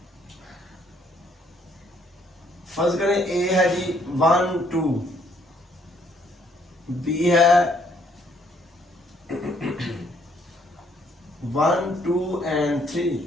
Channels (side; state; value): both; normal; correlation 0.67